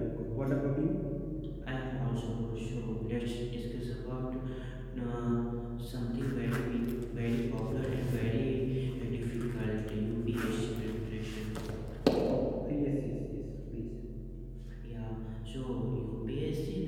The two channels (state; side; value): identical; both; correlation 1.00